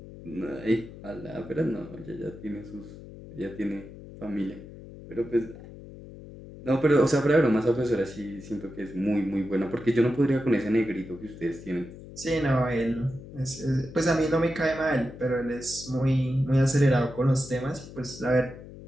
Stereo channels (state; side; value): noise; left; hum, 15 dB below the sound